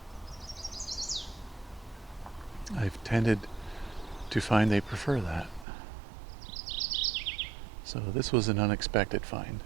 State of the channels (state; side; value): drops out; left; at 5.7 s